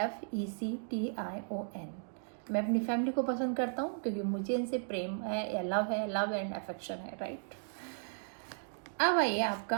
मैं अपनी फैमिली को पसंद करता हूँ क्योंकि मुझे इनसे प्रेम है या लव एंड अफेक्शन है, राइट? अब आइए आपका,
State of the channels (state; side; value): silent; left; digital silence